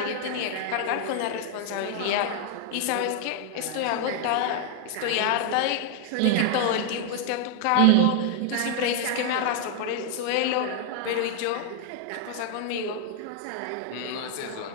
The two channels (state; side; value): different; both; correlation 0.00